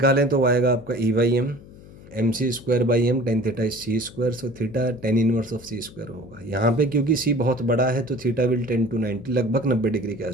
तो आएगा आपका E/m, mc²/m, tan theta is c²। So theta tan inverse of c² होगा। यहाँ पे क्योंकि c बहुत बड़ा है तो थीटा विल 10 to 90, लगभग 90 डिग्री के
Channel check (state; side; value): noise; left; hum, 20 dB below the sound